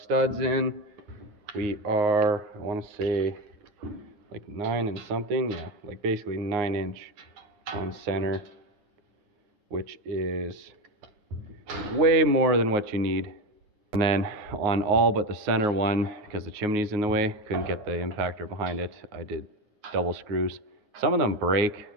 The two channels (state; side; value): late; left; 9.5 ms